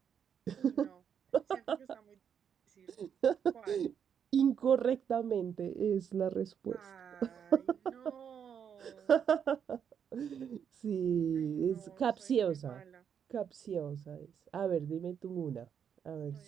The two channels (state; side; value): quieter; left; 7.9 dB